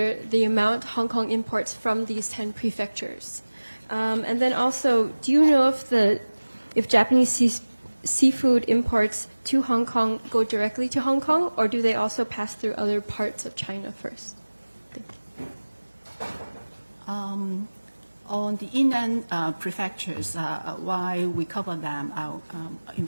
the amount Hong Kong imports from these 10 prefectures? And then also, do you know if Japanese seafood imports to Hong Kong go directly to Hong Kong, or do they also pass through other parts of China first? On the inland prefectures, why we cover them, I'll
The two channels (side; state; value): both; inverted; correlation -1.00